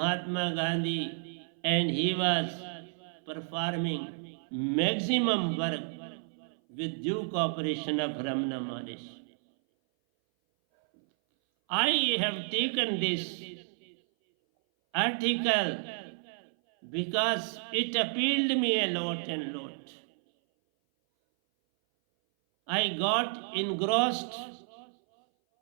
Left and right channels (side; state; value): left; silent; 57 dB below the other